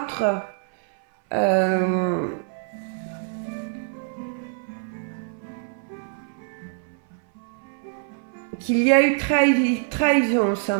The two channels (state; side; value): silent; left; 62 dB below the other